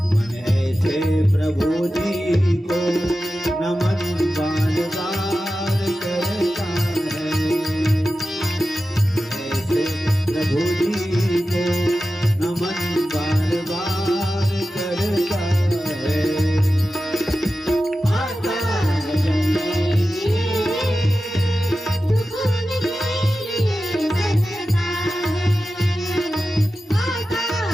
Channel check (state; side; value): normal; both; correlation 0.93